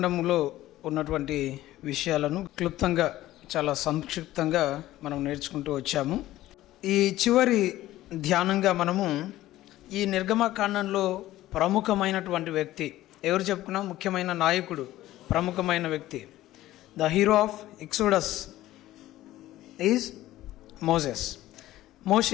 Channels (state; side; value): quieter; right; 15.3 dB